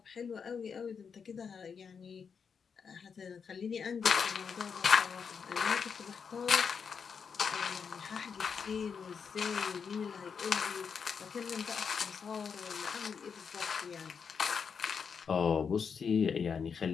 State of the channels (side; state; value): right; quieter; 6.2 dB